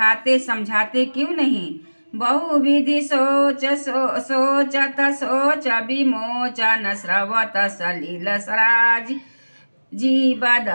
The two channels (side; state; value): both; inverted; correlation -1.00